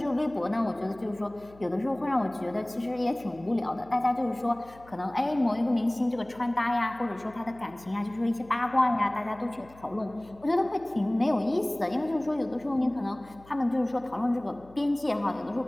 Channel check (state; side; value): noise; left; hum, 24 dB below the sound